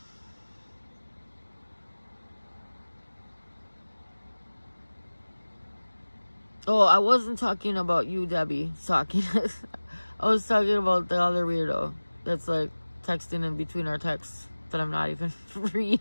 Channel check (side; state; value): both; inverted; correlation -1.00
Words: Oh, I wasn't talking about you, Debbie. I was talking about the other weirdo that's like texting in between our texts that I'm not even